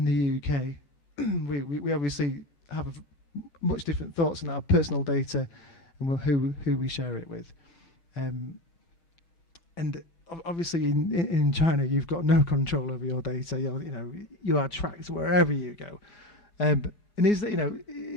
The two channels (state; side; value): late; right; 21 ms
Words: UK, we obviously have much different thoughts on our personal data and who we share it with. And obviously in China, you've got no control over your data. You are tracked wherever you go. And